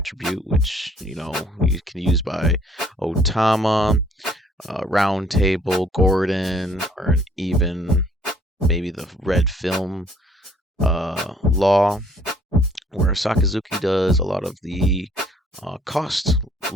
which you can use by Otama, Round Table, Gordon, or even maybe the Red Film Law, where Sakazuki does a lot of the cost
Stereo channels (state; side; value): normal; both; correlation 0.60